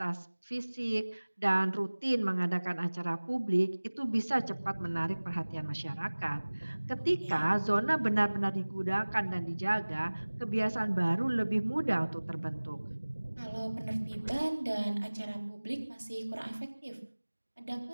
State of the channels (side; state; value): both; inverted; correlation -1.00